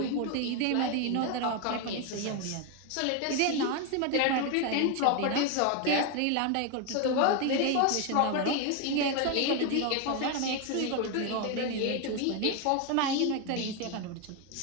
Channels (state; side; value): different; both; correlation 0.02